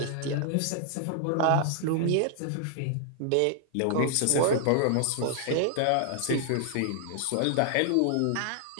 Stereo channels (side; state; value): both; different; correlation -0.01